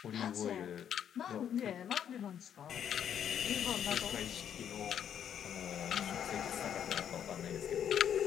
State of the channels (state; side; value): quieter; right; 9.1 dB